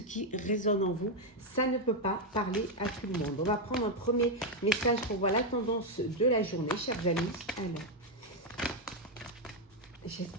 résonne en vous. Ça ne peut pas parler à tout le monde. On va prendre un premier message pour voir la tendance de la journée, chers amis. Alors.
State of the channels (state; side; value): normal; both; correlation 0.03